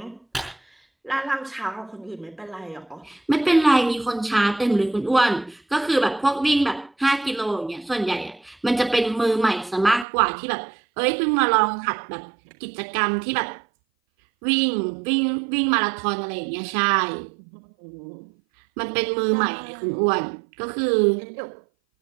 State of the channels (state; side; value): drops out; left; at 10.1 s